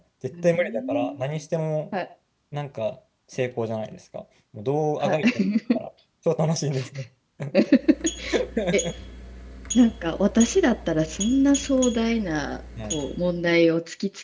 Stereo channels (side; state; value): both; identical; correlation 1.00